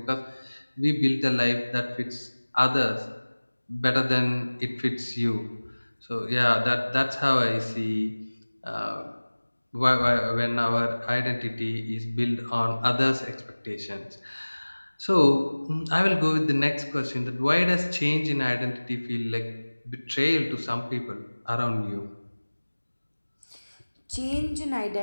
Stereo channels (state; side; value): inverted; both; correlation -1.00